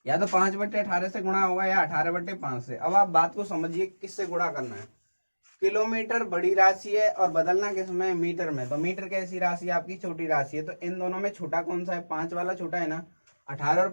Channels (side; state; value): both; inverted; correlation -1.00